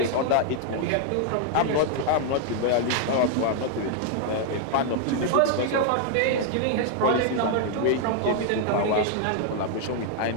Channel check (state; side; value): different; both; correlation 0.00